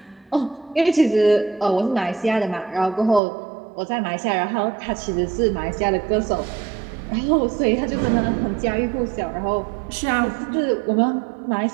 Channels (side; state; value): left; drops out; at 3.2 s